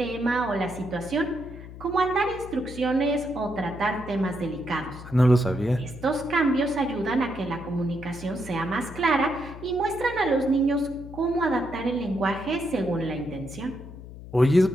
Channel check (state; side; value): noise; left; hum, 14 dB below the sound